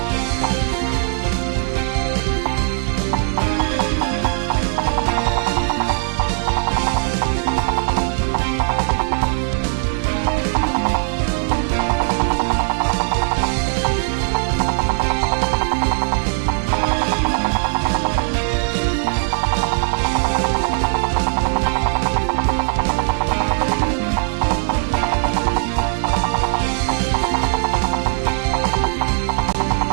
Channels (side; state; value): left; silent; digital silence